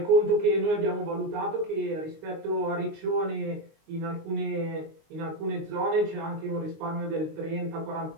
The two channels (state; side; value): late; left; 19 ms